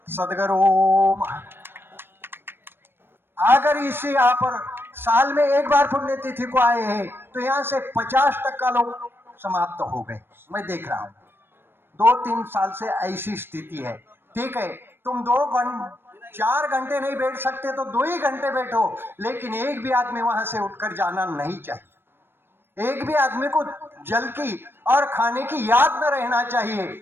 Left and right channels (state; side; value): late; left; 0.10 ms